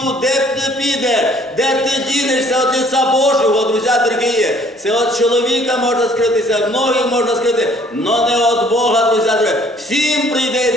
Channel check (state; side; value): normal; both; correlation 0.58